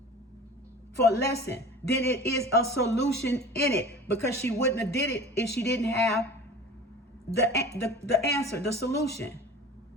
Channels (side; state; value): both; normal; correlation 0.40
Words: for a lesson, then it is a solution in it, because she wouldn't have did it if she didn't have the answer, the solution.